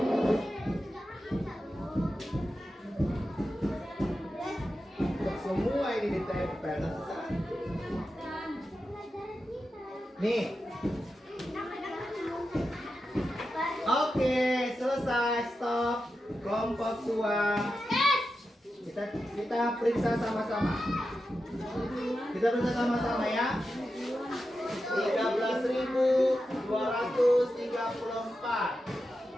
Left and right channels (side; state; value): both; normal; correlation 0.90